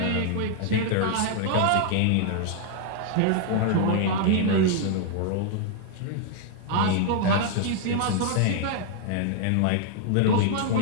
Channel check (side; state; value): both; different; correlation 0.00